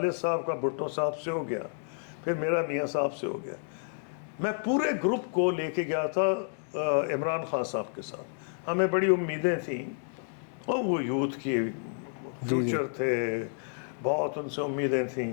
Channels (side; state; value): right; silent; 58 dB below the other